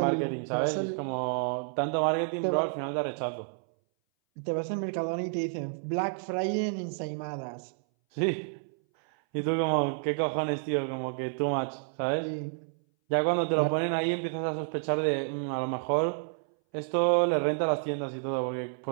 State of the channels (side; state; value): left; silent; 58 dB below the other